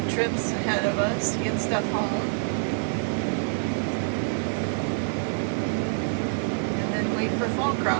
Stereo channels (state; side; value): silent; left; digital silence